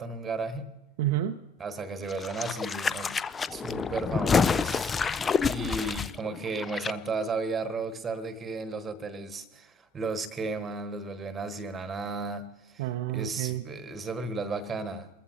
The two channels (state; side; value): normal; both; correlation 0.61